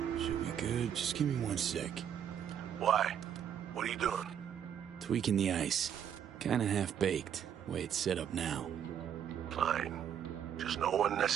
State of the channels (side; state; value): left; quieter; 9.0 dB